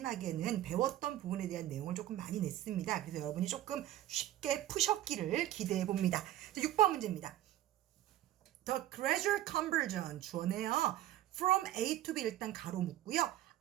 배웠던 부분에 대한 내용을 조금 많이 냈습니다. 그래서 여러분이 조금 쉽게 푸셨기를 기대해 봅니다. 6번 문제입니다. The gradual conversion 주어네요. From A to B 일단 가로 묶고요.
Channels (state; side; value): quieter; left; 13.7 dB